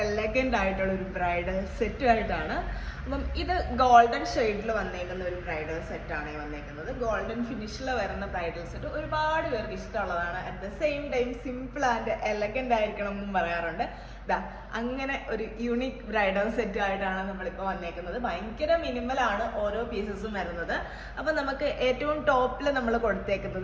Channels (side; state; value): both; identical; correlation 1.00